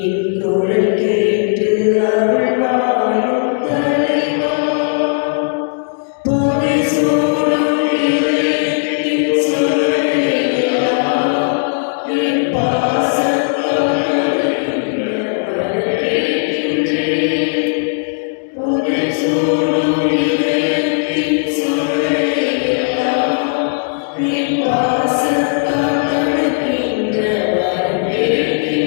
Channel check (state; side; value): silent; right; 68 dB below the other